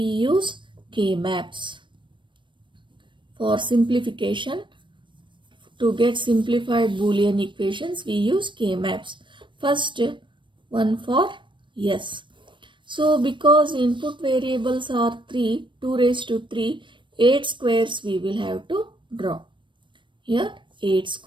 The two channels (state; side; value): late; left; 0.23 ms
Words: use K-maps. For simplification, to get simplified Boolean equations, we use K-maps. First one for yes. So because input variables are 3, 2 raised to 3, 8 squares we will have to draw. Here 8